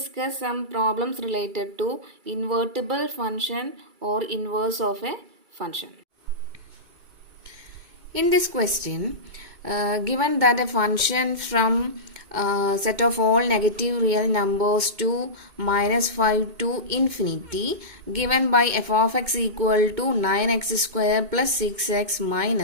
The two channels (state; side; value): late; left; 2.2 ms